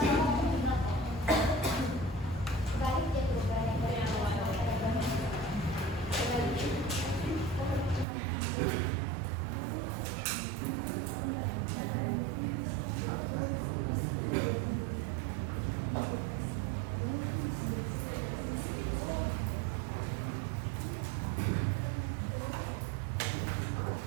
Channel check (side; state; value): left; drops out; at 8.1 s